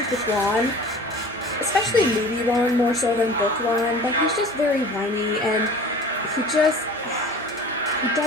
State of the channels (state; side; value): normal; both; correlation 0.42